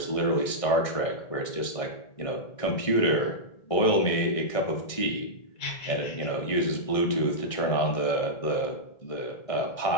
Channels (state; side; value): late; right; 1.6 ms